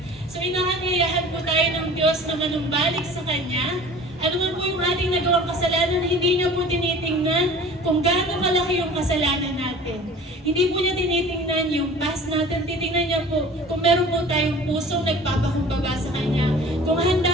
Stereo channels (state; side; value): normal; both; correlation 0.44